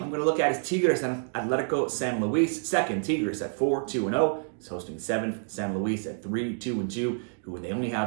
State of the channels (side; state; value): left; silent; digital silence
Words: going to look at is Tigres and Atletico San Luis. Second, Tigres at 4-2-0. Is hosting 7th San Luis at 3-2-2, who they only